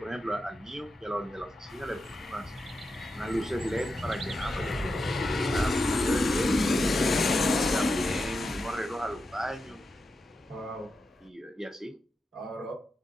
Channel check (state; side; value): normal; both; correlation 0.88